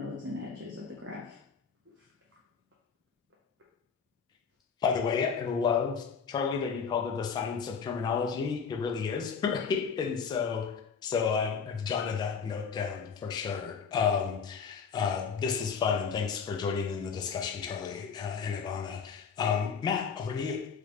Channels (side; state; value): right; quieter; 6.1 dB